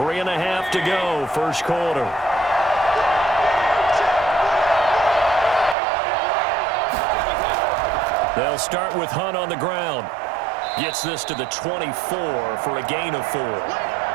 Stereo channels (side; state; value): left; drops out; at 5.8 s